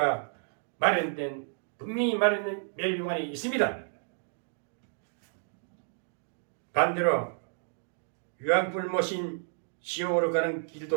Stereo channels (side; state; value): left; silent; digital silence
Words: 분명히 마련된 멸류관이 있습니다. 반대로 유황불 모신 지옥으로 가는